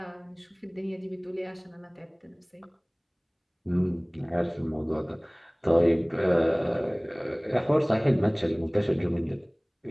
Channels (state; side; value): identical; both; correlation 1.00